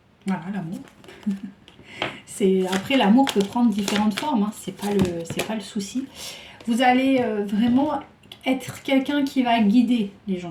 l'amour. Après, l'amour peut prendre différentes formes, hein. C'est pas le souci. Vous allez vraiment être quelqu'un qui va guider les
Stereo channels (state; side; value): identical; both; correlation 1.00